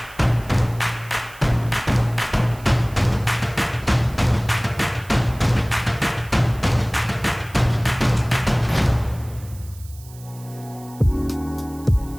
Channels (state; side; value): noise; right; hiss, 22 dB below the sound